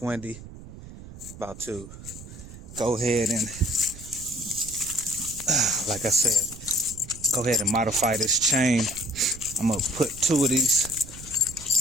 windy. About to go ahead and, like I said, go ahead and modify this chain. I'm gonna put 2 of these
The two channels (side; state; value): right; noise; rumble, 15 dB below the sound